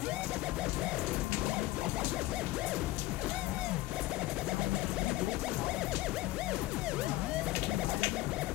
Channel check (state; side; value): quieter; right; 17.1 dB